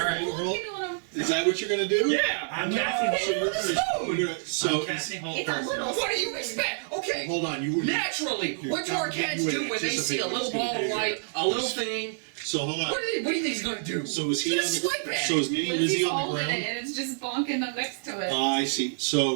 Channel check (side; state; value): left; silent; 60 dB below the other